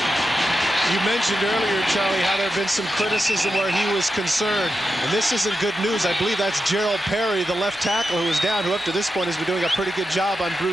You mentioned earlier, Charlie, how there have been some criticism where he was concerned. And this isn't good news. I believe that's Gerald Perry, the left tackle, who was down, who up to this point has been doing a pretty good job on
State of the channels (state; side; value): normal; both; correlation 0.89